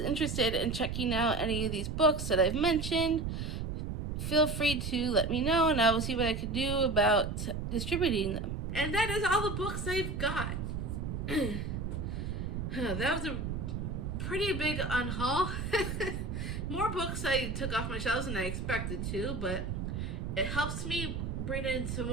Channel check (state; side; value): noise; right; rumble, 3 dB below the sound